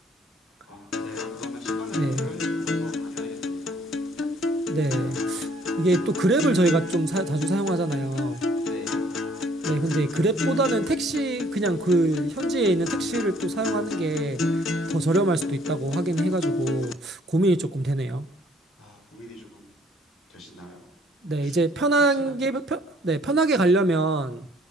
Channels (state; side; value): normal; both; correlation 0.61